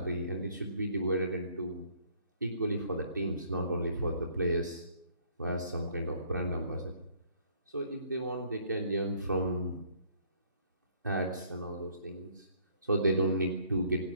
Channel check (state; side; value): inverted; both; correlation -0.62